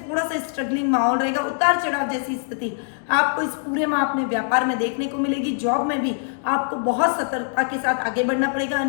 सा स्ट्रगलिंग माहौल रहेगा, उतार चढ़ाव जैसी स्थिति आपको इस पूरे माह अपने व्यापार में देखने को मिलेगी। जॉब में भी आपको बहुत सतर्कता के साथ आगे बढ़ना पड़ेगा,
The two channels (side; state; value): right; silent; digital silence